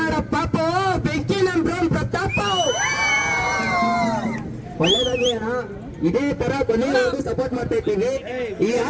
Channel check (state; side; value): identical; both; correlation 1.00